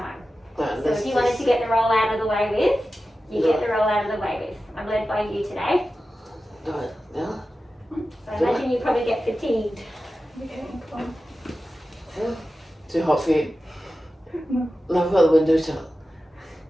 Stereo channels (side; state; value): both; normal; correlation 0.94